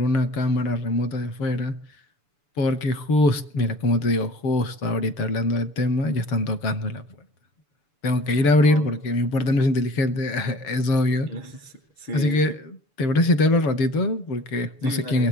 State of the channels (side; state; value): right; late; 7.0 ms